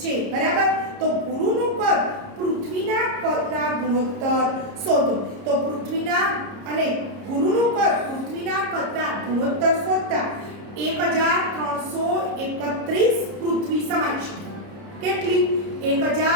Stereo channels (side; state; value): left; late; 30 ms